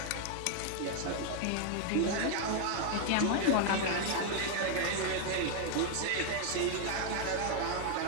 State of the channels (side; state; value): both; different; correlation 0.00